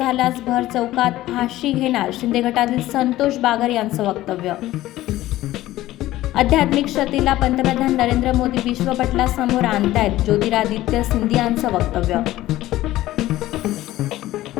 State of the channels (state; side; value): quieter; right; 15.7 dB